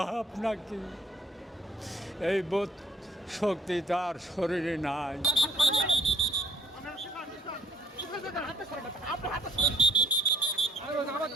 নাকি, এই বোধ শক্তি তার শরীরে নাই।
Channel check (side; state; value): both; normal; correlation 0.59